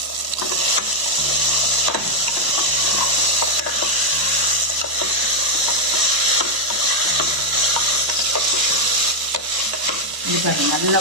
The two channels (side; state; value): left; late; 1.0 ms